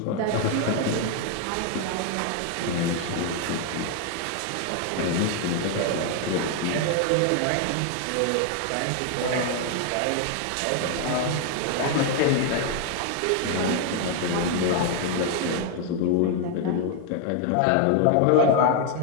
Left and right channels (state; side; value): different; both; correlation 0.00